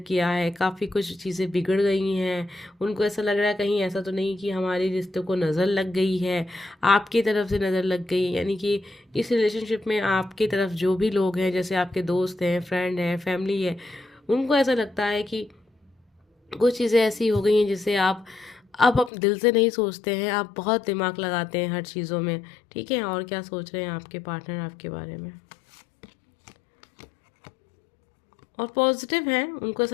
है, काफ़ी कुछ चीज़ें बिगड़ गई हैं। उनको ऐसा लग रहा है कहीं ऐसा तो नहीं कि हमारे रिश्ते को नज़र लग गई है, आपकी तरफ से नज़र लग गई, यानी कि इस रिलेशनशिप में आपकी तरफ जो भी लोग हैं, जैसे आपके दोस्त हैं, फ्रेंड हैं, फैमिली है, उनको ऐसा लगता है कि कुछ चीज़ें ऐसी हो गई हैं जिसे आप अब अपने दिल से नहीं सोचते हैं, आप बहुत दिमाग लगाते हैं हर चीज़ों में। ठीक है, और क्या सोच रहे हैं आपके पार्टनर आपके बारे में। और पॉजिटिव हैं, उनको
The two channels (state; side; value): drops out; right; at 19.1 s